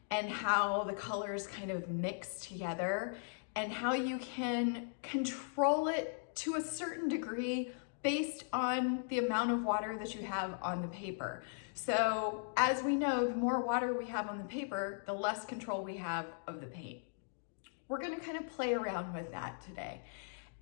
and how the colors kind of mix together, and how you can control it to a certain degree based on the amount of water that you have on the paper. So as we know, the more water we have on the paper, the less control we have of the paint. We're gonna kind of play around with that today.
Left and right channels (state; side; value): silent; right; digital silence